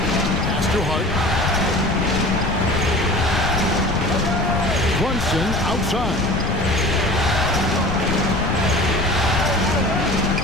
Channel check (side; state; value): left; noise; rumble, 3 dB below the sound